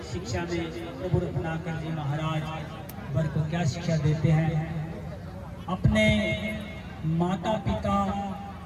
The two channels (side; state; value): both; identical; correlation 1.00